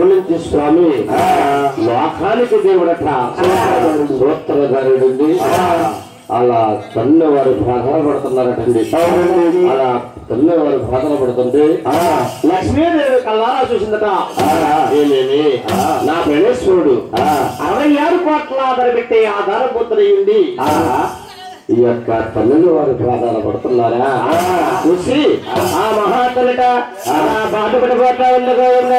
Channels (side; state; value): both; identical; correlation 1.00